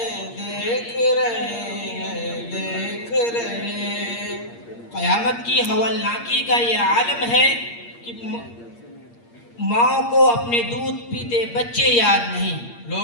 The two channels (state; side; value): late; right; 8.6 ms